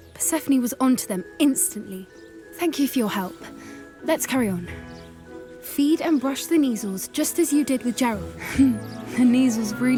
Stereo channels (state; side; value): identical; both; correlation 1.00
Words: Persephone was onto them instantly. Thank you for your help. Let's carry on. Feed and brush the Neasels just as you did with Gerald. The Neasels